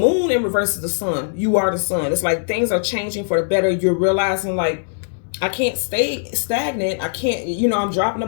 in reverse is the sun. You are the sun. It's like things are changing for the better. You're realizing, like, I can't stay stagnant. I can't, you know, I'm dropping the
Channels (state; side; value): silent; right; digital silence